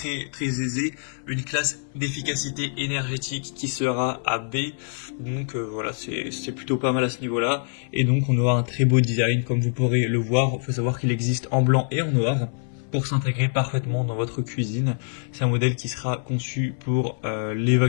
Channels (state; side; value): silent; right; 60 dB below the other